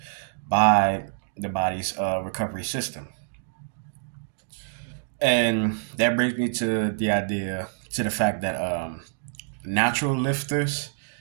by the body's recovery system. And that brings me to the fact that natural lifters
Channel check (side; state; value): left; silent; digital silence